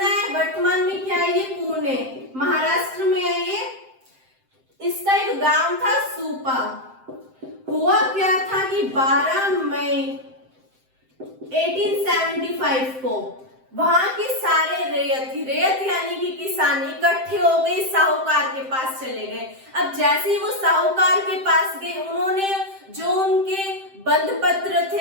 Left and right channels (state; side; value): late; left; 7.7 ms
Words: है वर्तमान में क्या है, ये पुणे महाराष्ट्र में है। ये इसका एक गांव था सूपा। हुआ क्या था कि 12 मई 1875 को वहां के सारे रेत यानी कि किसान इकट्ठे हो गए, साहूकार के पास चले गए। अब जैसे ही वो साहूकार के पास गए, उन्होंने जो उनके बंध पत्र